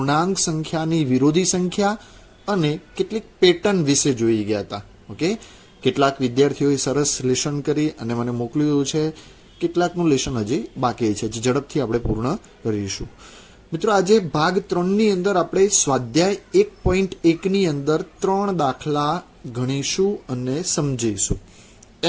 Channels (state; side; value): identical; both; correlation 1.00